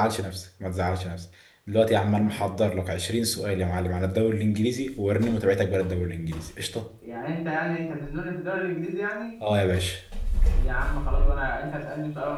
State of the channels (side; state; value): both; identical; correlation 1.00